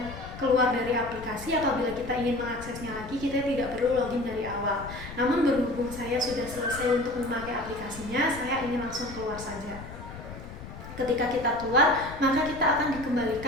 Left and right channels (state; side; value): noise; left; rumble, 13 dB below the sound